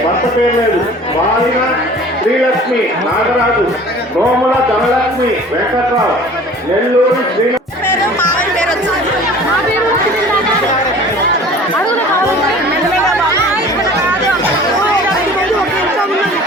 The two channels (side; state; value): both; normal; correlation 0.45